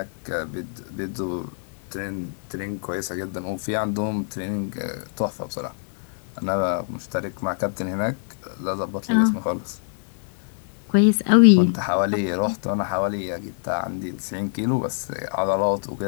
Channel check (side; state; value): right; silent; 62 dB below the other